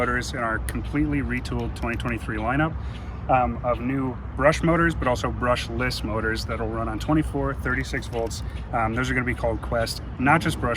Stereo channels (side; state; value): both; identical; correlation 1.00